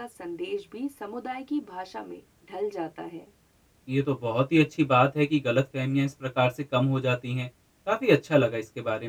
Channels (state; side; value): identical; both; correlation 1.00